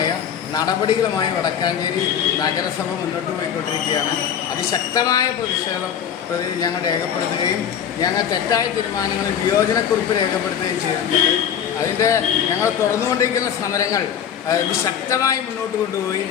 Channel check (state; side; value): quieter; right; 8.7 dB